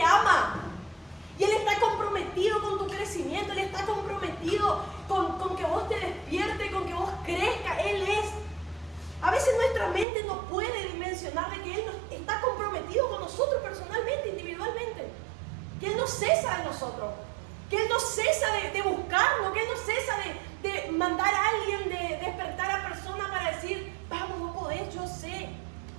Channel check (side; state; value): left; drops out; at 10.1 s